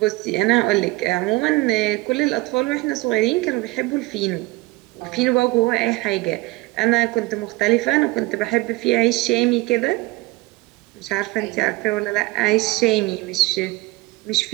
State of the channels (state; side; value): quieter; left; 21.7 dB